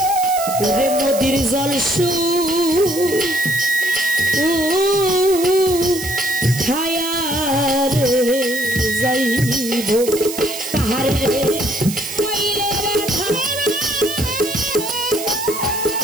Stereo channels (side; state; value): right; noise; hiss, 8 dB below the sound